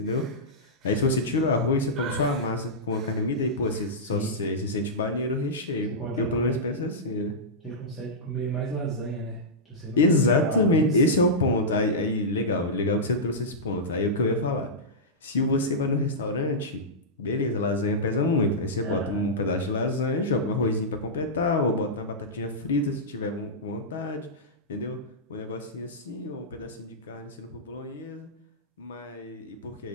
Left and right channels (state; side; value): normal; both; correlation -0.12